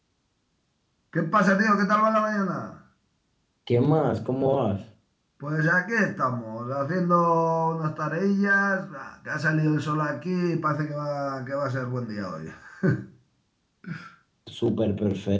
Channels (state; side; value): identical; both; correlation 1.00